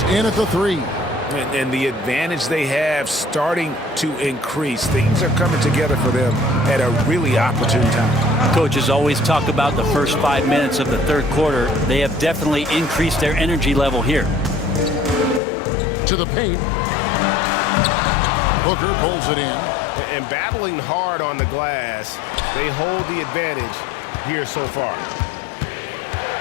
in at the 3. And the advantage they have starting to increase. Things are coming together for them at a really opportune time. Coaches always talk about the first 5 minutes of the third quarter. They have definitely increased their energy level here. To the paint. Booker pulls it in. And battling hard on the glass, they hold the advantage here so far.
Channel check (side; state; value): right; drops out; at 15.4 s